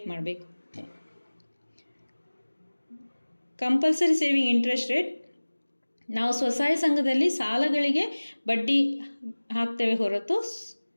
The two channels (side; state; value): both; inverted; correlation -1.00